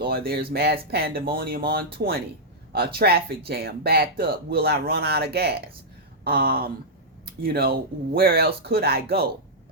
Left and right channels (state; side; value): normal; both; correlation -0.09